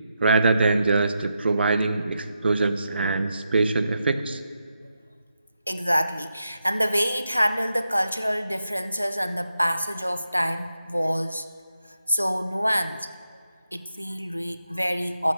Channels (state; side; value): inverted; both; correlation -0.86